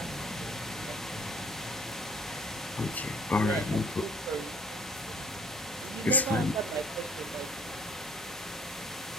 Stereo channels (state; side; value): normal; both; correlation 0.57